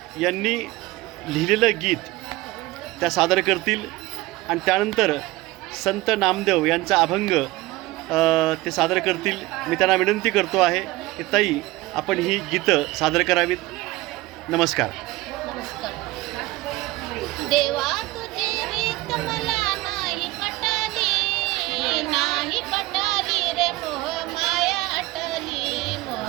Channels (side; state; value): left; quieter; 19.6 dB